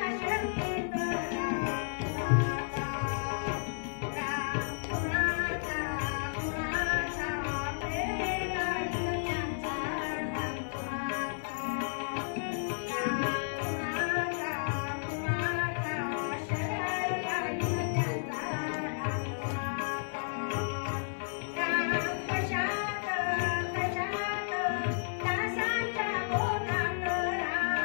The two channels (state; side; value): silent; right; 56 dB below the other